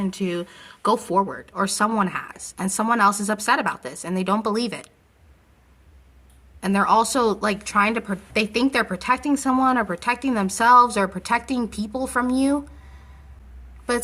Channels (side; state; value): both; identical; correlation 1.00